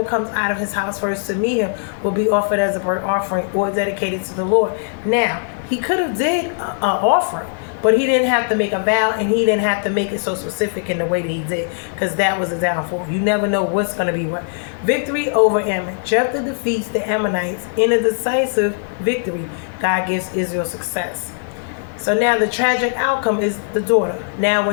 comes out of his house first to meet him will be offered as a burnt offering or dedicated to the Lord. Now, he could have did an offering, But he didn't have to make a vow, and he didn't have to make it so specific in the way that he did, because that was a downfall. You never know what's going to be what. Victory over Ammon. Jephthah defeats the Ammonites in a decisive victory. God gives Israel success. So now the tragic outcome is the daughter. Now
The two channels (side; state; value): right; silent; digital silence